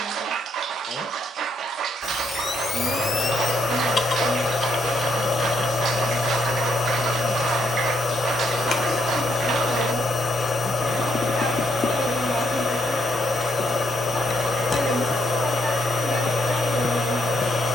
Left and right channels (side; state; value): both; normal; correlation 0.75